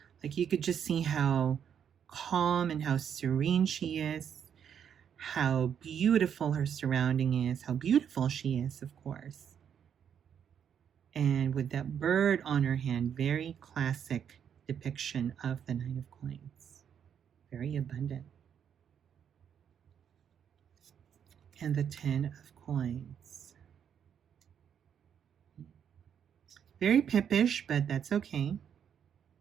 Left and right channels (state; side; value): quieter; left; 8.3 dB